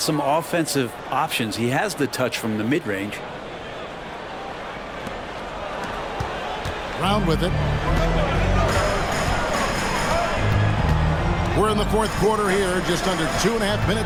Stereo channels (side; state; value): both; identical; correlation 1.00